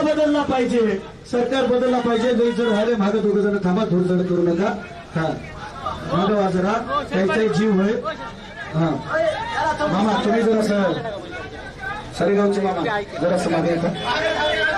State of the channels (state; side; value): identical; both; correlation 1.00